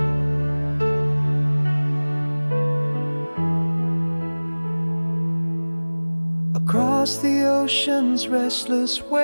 Across the ocean's restless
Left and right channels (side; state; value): both; inverted; correlation -1.00